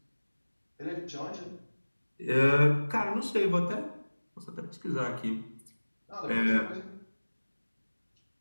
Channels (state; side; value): inverted; both; correlation -1.00